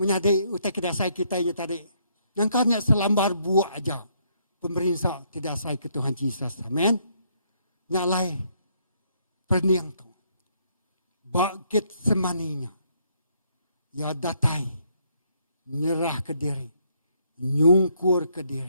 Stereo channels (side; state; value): both; inverted; correlation -0.71